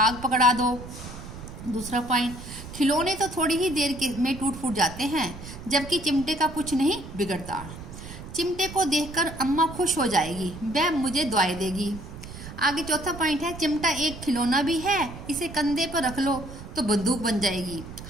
पकड़ा दो। दूसरा पॉइंट, खिलौने तो थोड़ी ही देर में टूट फूट जाते हैं, जबकि चिमटे का कुछ नहीं बिगड़ता। चिमटे को देखकर अम्मा खुश हो जाएगी, वह मुझे दुआएं देगी। आगे चौथा पॉइंट है, चिमटा एक खिलौना भी है। इसे कंधे पर रख लो तो बंदूक बन जाएगी,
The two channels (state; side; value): noise; right; rumble, 12 dB below the sound